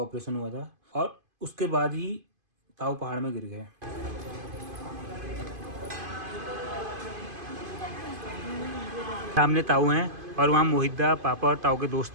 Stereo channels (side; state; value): left; late; 2.5 ms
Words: हुआ था और उसके बाद ही ताऊ पहाड़ में गिर गए। सामने ताऊ हैं और वहाँ मोहिद्दा पापा और ताऊ के